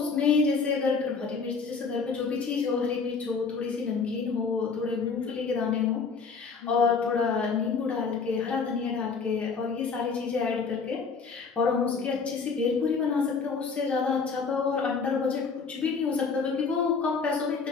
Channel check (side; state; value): right; quieter; 5.1 dB